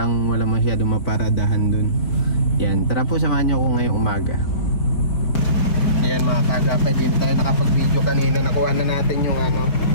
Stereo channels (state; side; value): late; right; 4.4 ms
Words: masyado maparadahan doon. Yan. Tara po, samahan niyo ako ngayong umaga. Ayan mga kagapay, din tayo nakapag-video kanina. Nakuha na natin yung